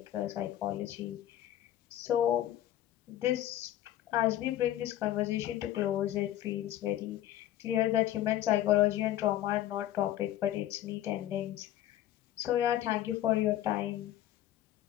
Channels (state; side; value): quieter; right; 13.0 dB